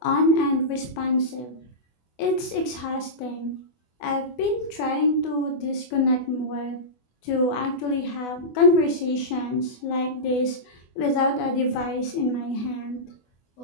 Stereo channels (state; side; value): late; right; 24 ms